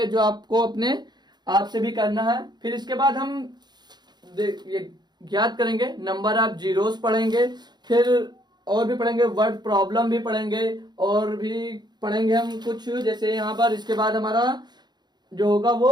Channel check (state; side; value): late; left; 0.21 ms